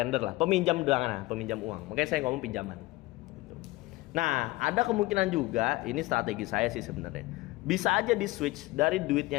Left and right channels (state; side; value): quieter; right; 20.2 dB